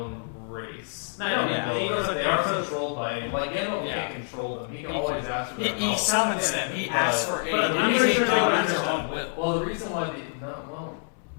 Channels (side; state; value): right; silent; digital silence